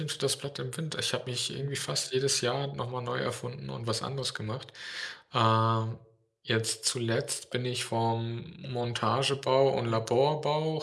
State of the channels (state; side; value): identical; both; correlation 1.00